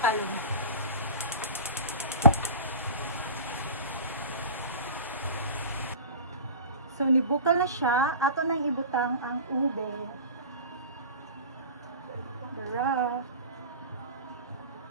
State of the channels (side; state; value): both; inverted; correlation -0.35